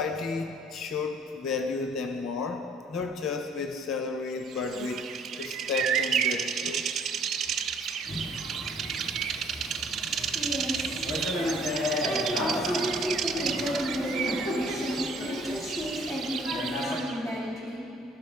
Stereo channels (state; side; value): normal; both; correlation 0.59